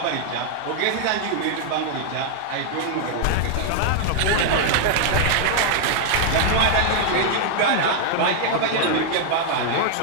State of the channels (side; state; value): both; different; correlation 0.00